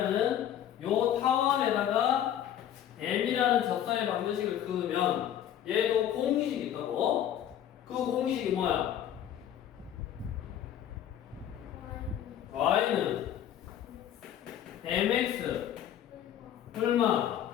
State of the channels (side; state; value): right; quieter; 10.6 dB